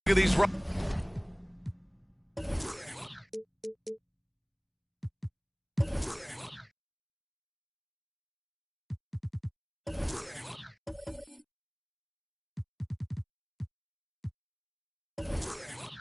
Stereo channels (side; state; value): both; identical; correlation 1.00